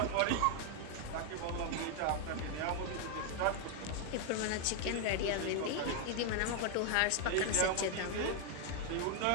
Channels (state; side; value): different; both; correlation 0.00